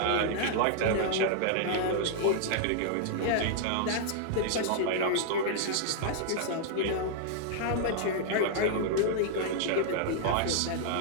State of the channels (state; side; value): different; both; correlation -0.01